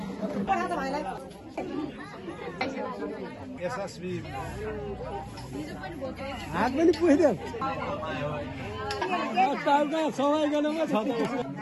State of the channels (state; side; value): identical; both; correlation 1.00